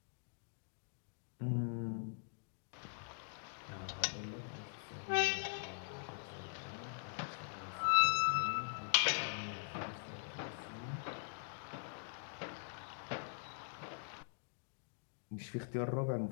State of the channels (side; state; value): right; silent; digital silence